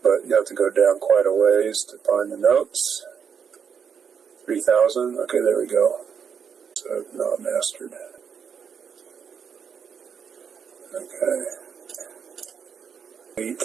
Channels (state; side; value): quieter; left; 7.0 dB